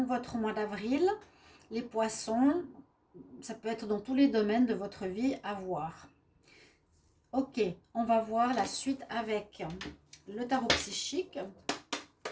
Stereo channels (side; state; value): both; identical; correlation 1.00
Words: votre mois d'avril. Les poissons, ça peut être dans tous les domaines de votre vie à voir. Ok, on va voir la suite avec le tarot psychique.